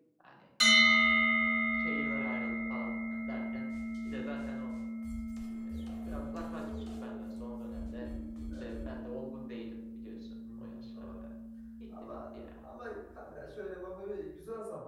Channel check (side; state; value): both; identical; correlation 1.00